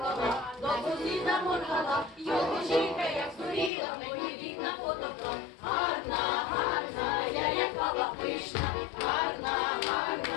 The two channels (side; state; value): right; drops out; at 3.7 s